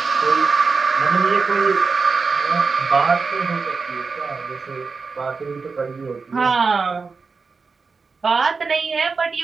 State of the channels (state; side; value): quieter; left; 4.7 dB